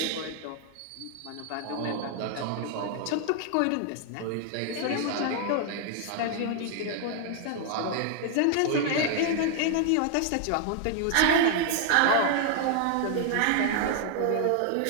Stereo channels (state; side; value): different; both; correlation 0.00